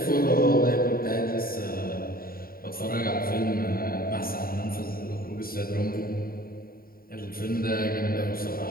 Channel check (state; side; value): late; right; 0.43 ms